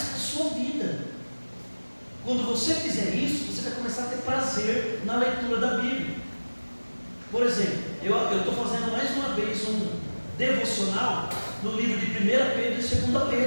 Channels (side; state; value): both; inverted; correlation -1.00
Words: para a sua vida. Quando você fizer isso, você vai começar a ter prazer na leitura da Bíblia. Por exemplo, eu estou fazendo mais uma vez um devocional no livro de 1 Pedro e 2